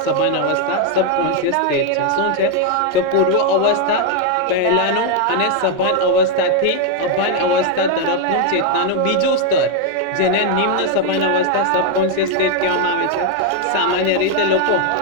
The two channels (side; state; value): both; different; correlation 0.00